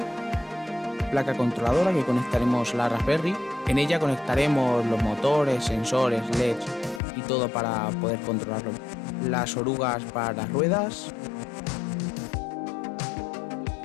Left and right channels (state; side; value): drops out; right; at 7.0 s